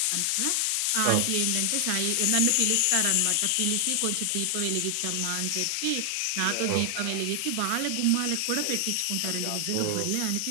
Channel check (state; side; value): different; both; correlation 0.00